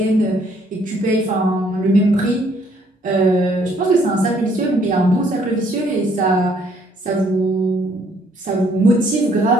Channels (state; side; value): normal; both; correlation 0.65